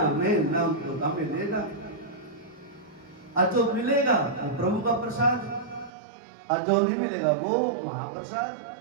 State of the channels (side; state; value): left; drops out; at 5.9 s